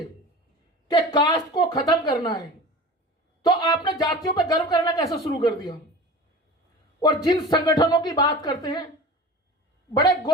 कि कास्ट को खत्म करना है, तो आपने जातियों पर गर्व करना कैसे शुरू कर दिया। और जिन संगठनों की बात करते हैं बड़े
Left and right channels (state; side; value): normal; both; correlation 0.36